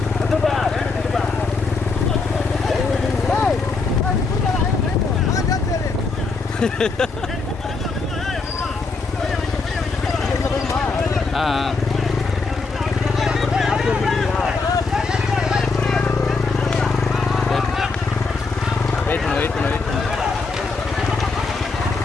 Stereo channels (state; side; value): quieter; right; 4.2 dB